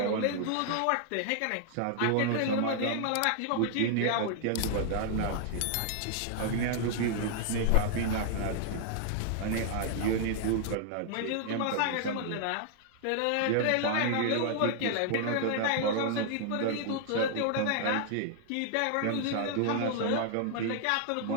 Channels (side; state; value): both; different; correlation -0.01